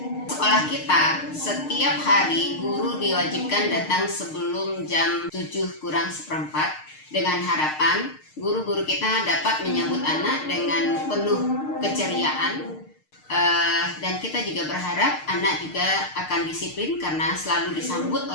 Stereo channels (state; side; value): late; right; 6.6 ms